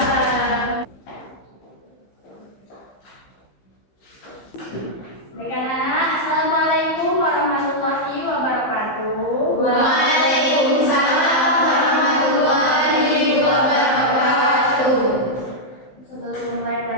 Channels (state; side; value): late; right; 15 ms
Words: Baik anak-anak, Assalamualaikum warahmatullahi wabarakatuh. Waalaikumsalam warahmatullahi wabarakatuh. Sebelum memulai